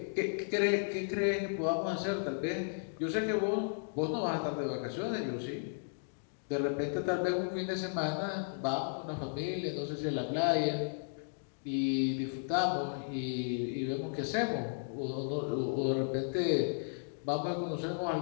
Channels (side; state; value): right; silent; digital silence